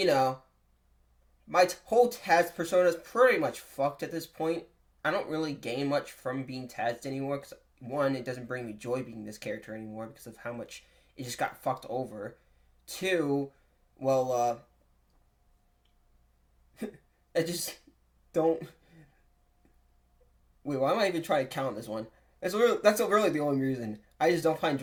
my whole Taz persona is pretty much fucked at this point. I don't really gain much from being Taz anymore, because, one, it doesn't bring me joy being this character anymore because of how much it just got fucked over. 2, well, I just don't... Wait, why am I even trying to count this one? That's really the only reason. I just don't find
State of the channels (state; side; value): identical; both; correlation 1.00